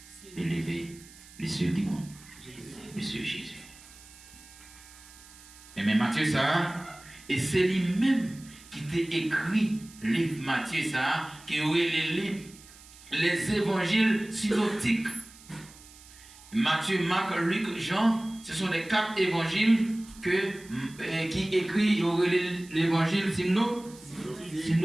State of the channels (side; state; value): right; noise; hiss, 21 dB below the sound